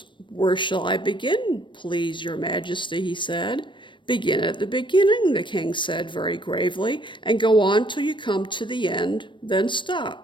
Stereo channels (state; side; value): late; right; 0.23 ms